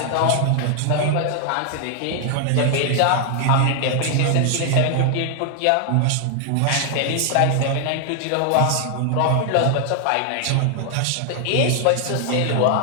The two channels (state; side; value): different; both; correlation 0.00